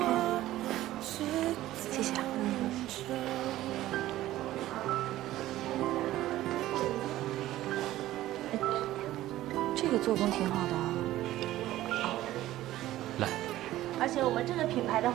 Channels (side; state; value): left; quieter; 15.0 dB